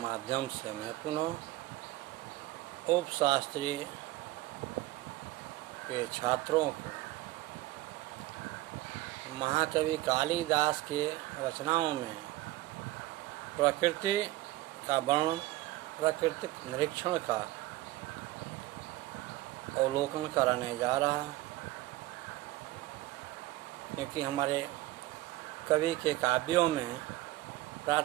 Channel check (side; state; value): left; quieter; 17.4 dB